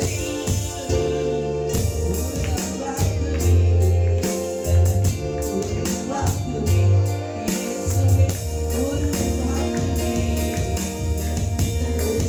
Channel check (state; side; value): identical; both; correlation 1.00